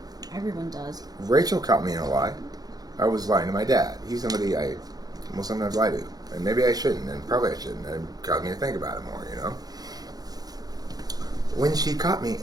Everyone does. Rachel caught me in a lie. I was lying to my dad. He's somebody I will sometimes lie to. And maybe I shouldn't, and probably I shouldn't. And it caused me to think about it more, you know? When she caught me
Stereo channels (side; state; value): left; late; 0.19 ms